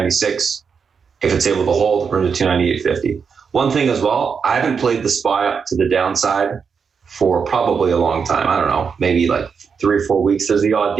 If it's able to hold, room to 298.50. One thing as well, I haven't played the SPY up to the downside for probably a long time. I don't know, maybe like 3 or 4 weeks. There's the odd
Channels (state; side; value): quieter; left; 6.0 dB